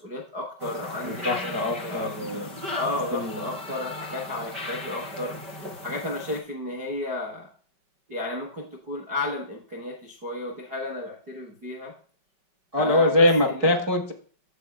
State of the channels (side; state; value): left; late; 5.1 ms